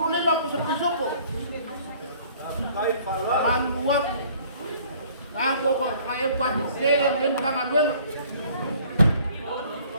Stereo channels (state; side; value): inverted; both; correlation -0.55